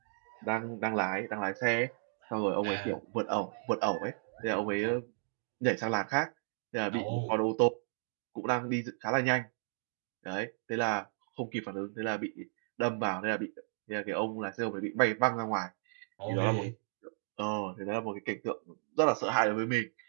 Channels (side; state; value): left; silent; digital silence